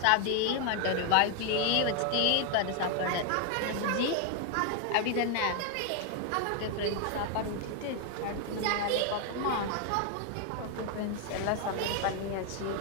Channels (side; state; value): both; different; correlation 0.01